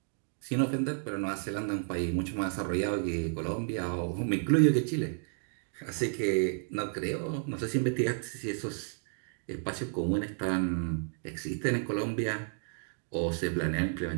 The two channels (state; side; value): silent; left; 56 dB below the other